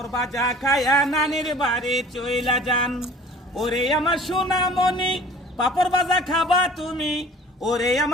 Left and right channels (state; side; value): normal; both; correlation 0.47